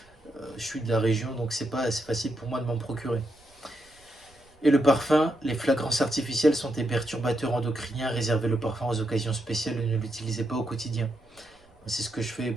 Je suis de la région, donc c'est facile pour moi de m'en procurer. Et le parfum, les fragrances artificielles sont des perturbateurs endocriniens. Réservez le parfum aux occasions spéciales et ne l'utilisez pas au quotidien. C'est ce que je fais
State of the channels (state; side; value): noise; right; rumble, 30 dB below the sound